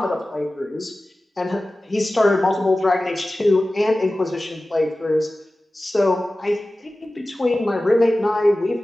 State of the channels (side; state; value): both; normal; correlation 0.96